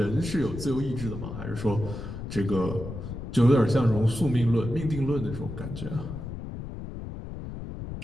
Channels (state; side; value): noise; left; rumble, 8 dB below the sound